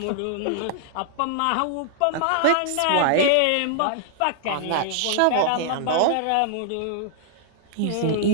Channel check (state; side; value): different; both; correlation 0.00